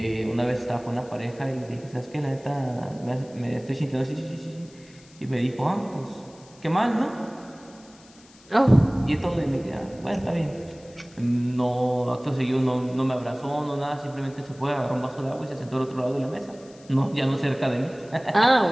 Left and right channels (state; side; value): noise; left; hiss, 26 dB below the sound